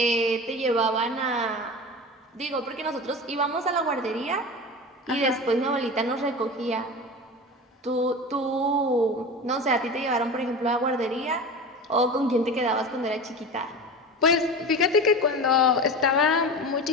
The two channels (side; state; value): both; normal; correlation 0.30